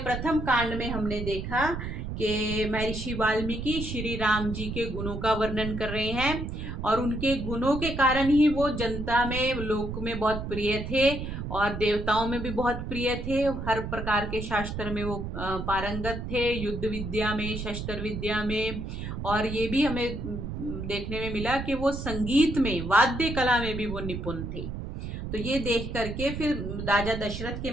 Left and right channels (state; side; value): noise; right; rumble, 6 dB below the sound